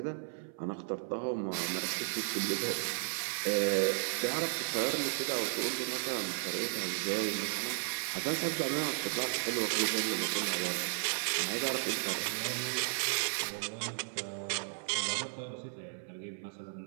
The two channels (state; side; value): silent; left; 55 dB below the other